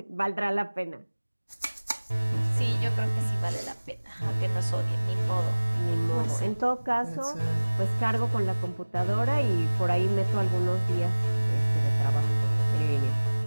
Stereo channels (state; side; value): inverted; both; correlation -1.00